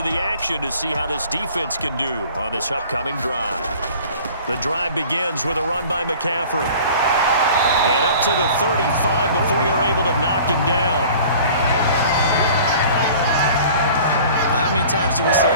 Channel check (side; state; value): both; inverted; correlation -0.46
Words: the action to see how this defense can do on this upcoming drive. The drive begins with a run by McCaffrey. And up to the 35 before they're able to knock him down. How many times do we say